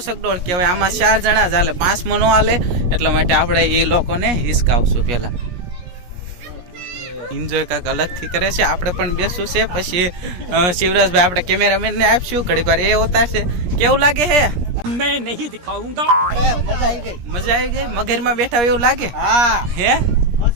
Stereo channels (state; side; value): late; left; 17 ms